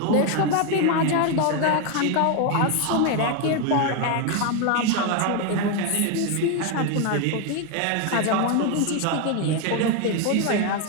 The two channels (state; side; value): different; both; correlation 0.01